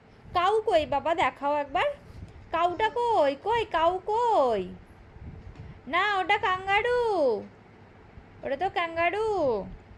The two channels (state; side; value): identical; both; correlation 1.00